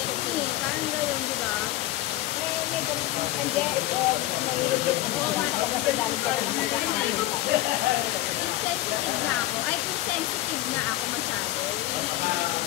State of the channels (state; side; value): quieter; right; 15.7 dB